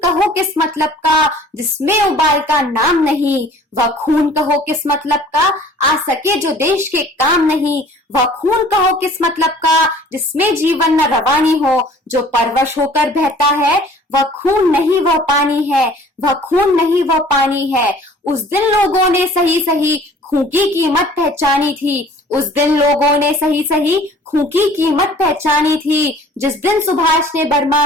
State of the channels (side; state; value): both; normal; correlation 0.51